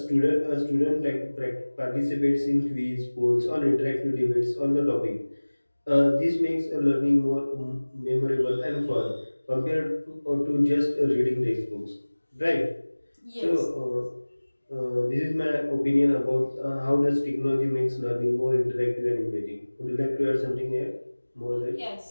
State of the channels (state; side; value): inverted; both; correlation -1.00